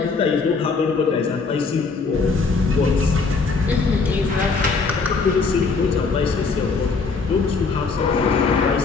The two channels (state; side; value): quieter; right; 4.5 dB